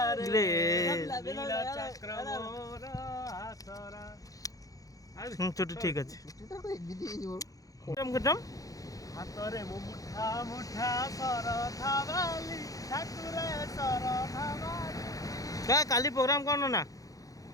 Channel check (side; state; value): right; late; 0.17 ms